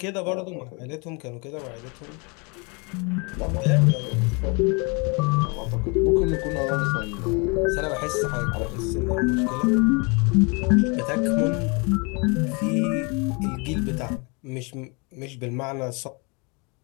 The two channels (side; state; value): right; quieter; 31.3 dB